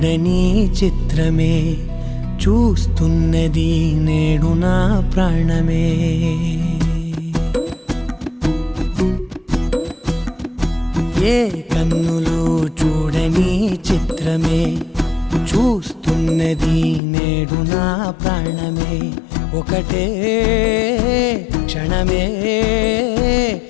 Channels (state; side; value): drops out; right; at 17.0 s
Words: చిత్రమే చూస్తున్నది నేడు నా ప్రాణమే. ఏ కన్నులు చూడని చిత్రమే చూస్తున్నది నేడు నా ప్రాణమే. ఒకటే క్షణమే